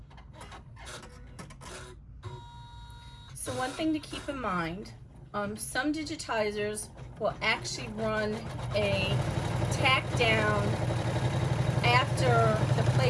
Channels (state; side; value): identical; both; correlation 1.00